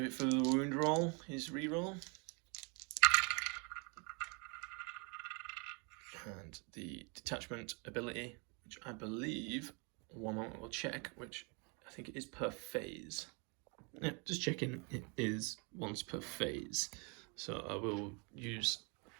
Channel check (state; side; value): quieter; left; 33.6 dB